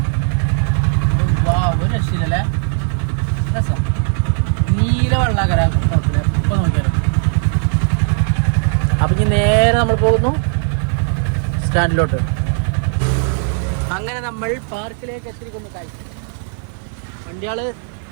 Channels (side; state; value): left; silent; 64 dB below the other